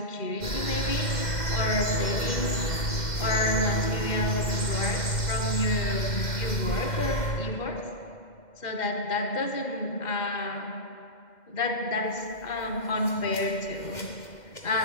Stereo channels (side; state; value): right; late; 2.1 ms